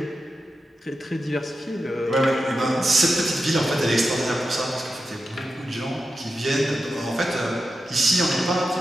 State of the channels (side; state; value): both; normal; correlation 0.90